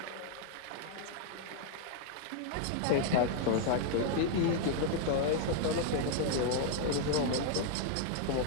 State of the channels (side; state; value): both; different; correlation 0.00